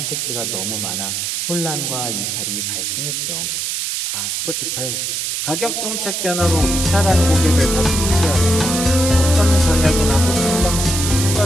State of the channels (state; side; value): noise; right; hiss, 2 dB below the sound